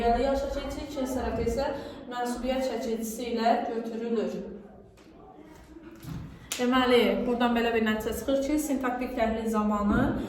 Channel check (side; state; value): both; identical; correlation 1.00